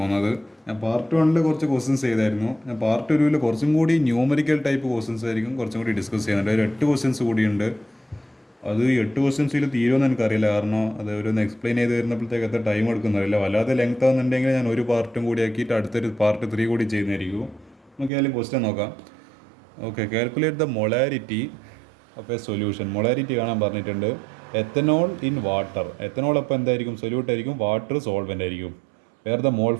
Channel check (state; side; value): drops out; left; at 18.1 s